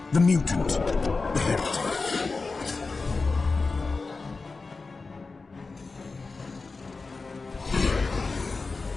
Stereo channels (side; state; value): right; quieter; 4.0 dB